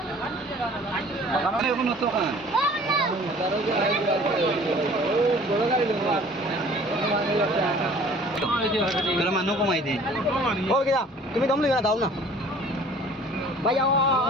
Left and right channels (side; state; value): both; normal; correlation 0.50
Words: এখন তো কান বড় গাড়ি দেবা मेरा मानो कमाई दे ओ क्या तुम्हें दम लेना दाओ ना भाई